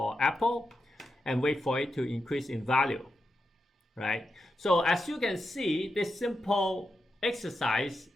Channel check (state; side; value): normal; both; correlation 0.87